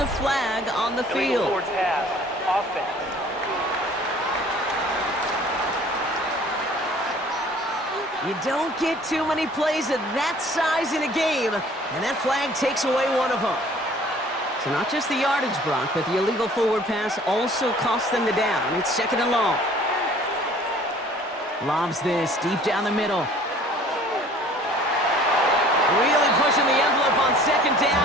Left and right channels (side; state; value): both; normal; correlation 0.52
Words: a flag on the field. Towards half. Offense. You don't get too many plays of that size in a game, and that flag takes away one of them. So not just the yardage, Brock, but the illegal forward pass also costs them the down. It's second and long. Lobs this deep down the middle. Really pushing the envelope on second